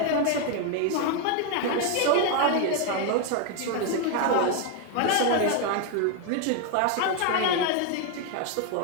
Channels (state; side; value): different; both; correlation 0.00